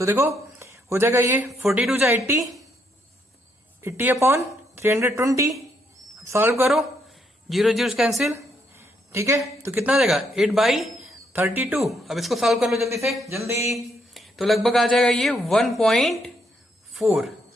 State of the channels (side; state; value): both; normal; correlation 0.74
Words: देखो हो जाएगा ये 42 जा 80 अपॉन 320। सॉल्व करो, 0 0 कैंसिल। ठीक है, तो कितना आ जाएगा, 8/32। अब इसको सॉल्व कर लो जल्दी से, जल्दी। तो लगभग आ जाएगा ये 1.4,